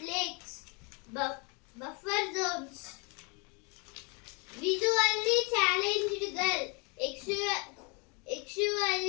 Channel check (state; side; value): quieter; right; 32.2 dB